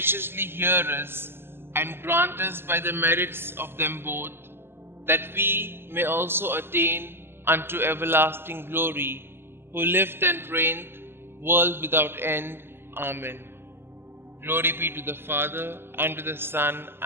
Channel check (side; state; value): left; late; 0.11 ms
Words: hear us and grant us by the merits of them both, that we may also attain unto everlasting glory, who lived and reigned, world without end. Amen. Glory be to the Father, and to the Son,